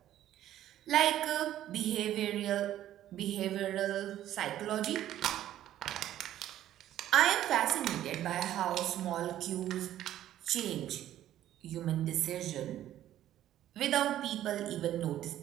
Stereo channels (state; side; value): quieter; left; 12.5 dB